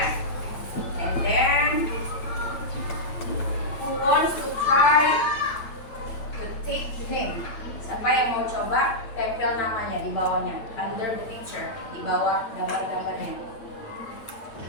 And then who wants to try to take the name? Siapa yang mau coba tempel namanya di bawahnya, under the picture, di bawah gambar-gambarnya. Di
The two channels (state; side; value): late; right; 8.9 ms